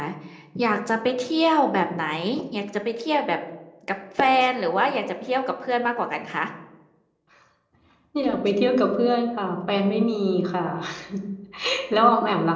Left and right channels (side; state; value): both; identical; correlation 1.00